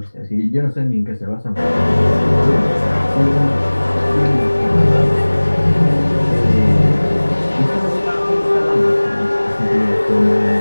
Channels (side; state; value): both; inverted; correlation -1.00